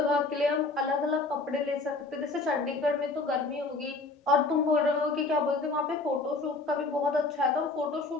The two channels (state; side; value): quieter; right; 3.5 dB